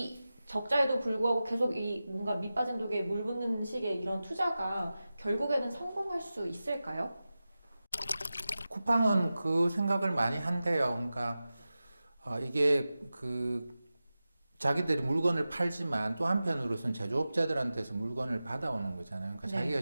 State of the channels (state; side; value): inverted; both; correlation -0.94